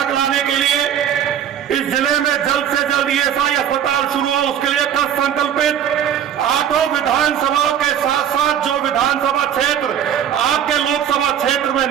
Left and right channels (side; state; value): left; quieter; 9.5 dB